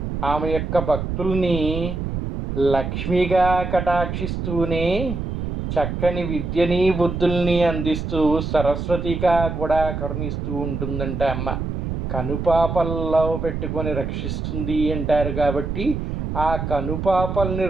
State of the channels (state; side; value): noise; right; rumble, 4 dB below the sound